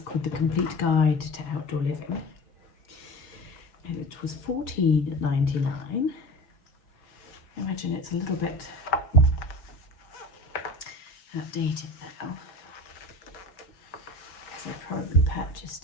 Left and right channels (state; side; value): late; right; 5.1 ms